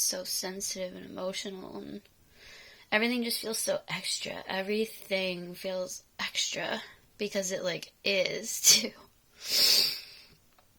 so sensitive and emotional, and everything just feels so extra. Everything feels extra because it like is too.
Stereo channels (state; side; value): identical; both; correlation 1.00